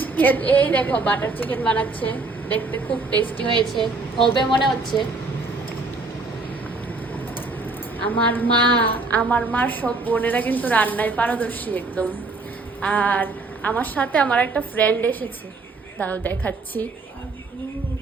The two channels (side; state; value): left; quieter; 3.5 dB